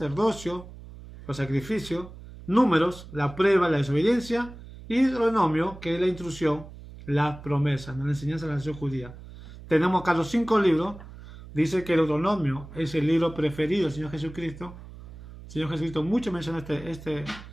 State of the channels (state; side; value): noise; right; hum, 16 dB below the sound